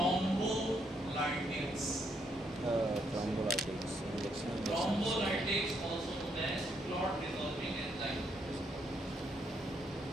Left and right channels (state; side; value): normal; both; correlation 0.74